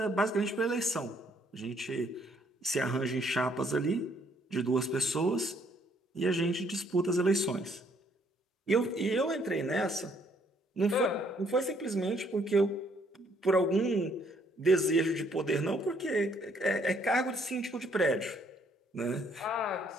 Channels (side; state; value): both; normal; correlation 0.67